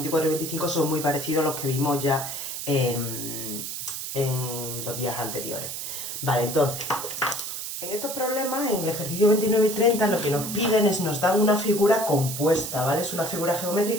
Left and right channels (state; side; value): noise; right; hiss, 6 dB below the sound